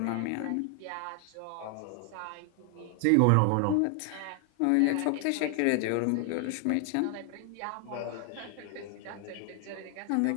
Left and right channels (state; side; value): different; both; correlation 0.00